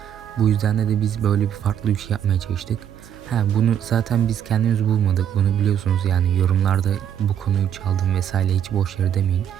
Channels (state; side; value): quieter; left; 9.3 dB